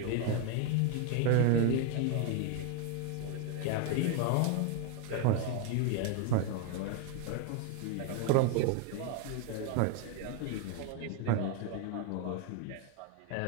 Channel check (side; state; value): both; different; correlation 0.01